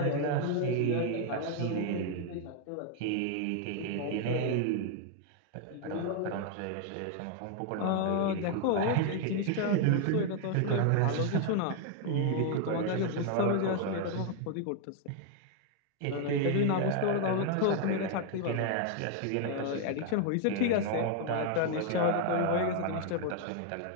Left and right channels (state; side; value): different; both; correlation 0.00